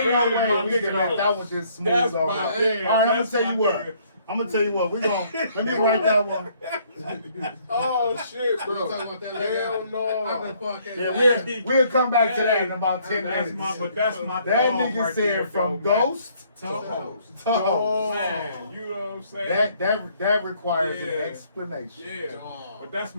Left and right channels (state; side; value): inverted; both; correlation -0.64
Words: no way we can let that one just smooth over. All right, I'm gonna tell you what. Let me write that one. Oh shit, bro. Hell no. Yeah, we'll come back to that in about 10 minutes. That's my that dog nigga right said there, from though, ghost to host. Man, you know what I'm saying? That requires an explanation. Yeah. But that's